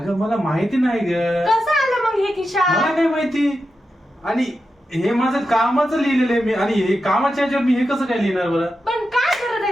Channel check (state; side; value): normal; both; correlation 0.89